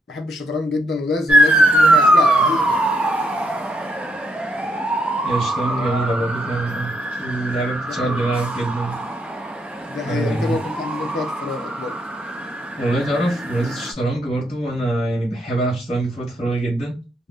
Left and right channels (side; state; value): both; normal; correlation 0.76